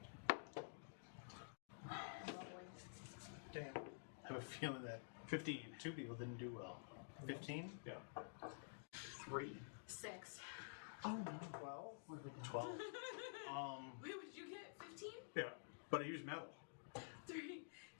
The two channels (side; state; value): right; silent; digital silence